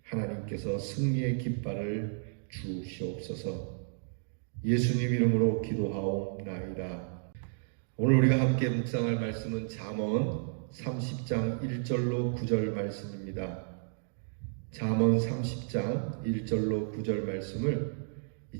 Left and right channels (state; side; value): silent; left; digital silence